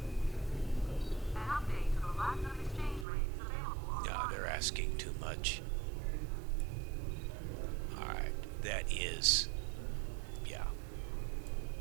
No, they're asking too much. Alright, that is... yeah.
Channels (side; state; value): left; drops out; at 3.1 s